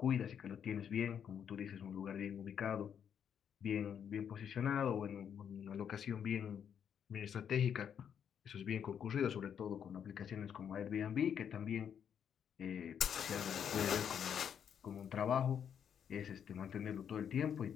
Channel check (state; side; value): quieter; right; 8.2 dB